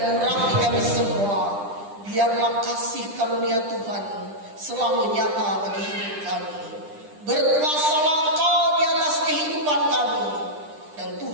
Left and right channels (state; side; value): late; left; 10 ms